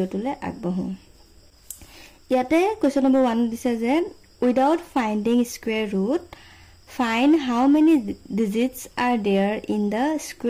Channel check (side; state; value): both; identical; correlation 1.00